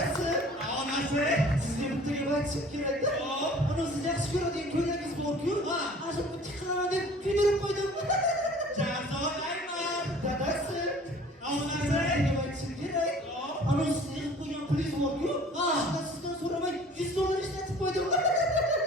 onasi, sizga bitta gap aytishim kerak-da. Ana siz yaxshi ko'radigan ko'ylagingiz bor-ku. Ana shu bitta qilaman deb kuydirib qo'ydim. Jazolayman. Dadasi, onasi, gap aytishim kerak. Ana siz yig'ib qo'ygan pulingiz bor-ku. Shunda sizdan so'ramay $100 ishlatib qo'ydim.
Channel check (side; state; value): both; normal; correlation 0.48